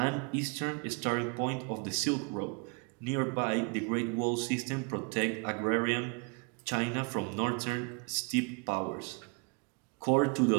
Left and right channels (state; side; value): quieter; left; 34.5 dB